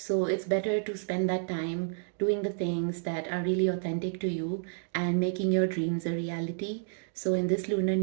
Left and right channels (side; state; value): left; silent; digital silence